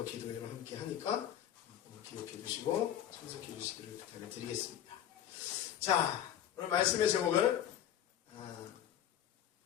기도회를 함께 하니까 기억해 주시고 참석해 주시기를 부탁을 드리겠습니다. 자 오늘 말씀의 제목을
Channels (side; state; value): right; quieter; 10.6 dB